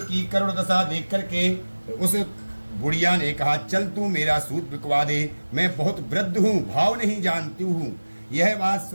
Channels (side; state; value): both; inverted; correlation -1.00